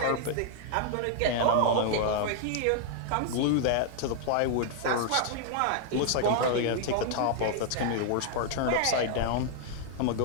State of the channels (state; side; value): different; both; correlation -0.01